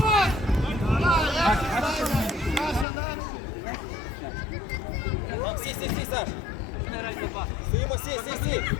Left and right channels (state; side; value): drops out; right; at 2.9 s